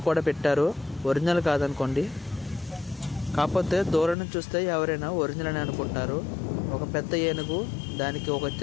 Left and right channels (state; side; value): drops out; right; at 4.2 s